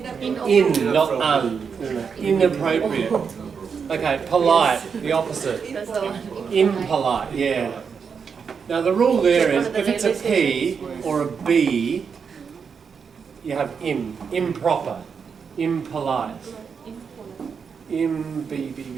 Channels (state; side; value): quieter; left; 6.2 dB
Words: In, not un. Inappropriate. Okay, polite, the opposite. Impolite, yeah. Now the rule there is, if it's a P or a B, you have im. Improper. Impolite.